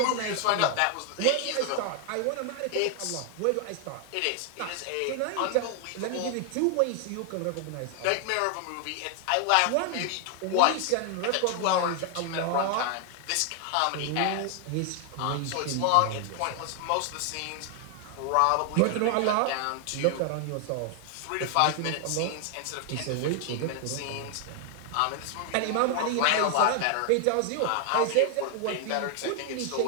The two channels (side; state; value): both; different; correlation 0.00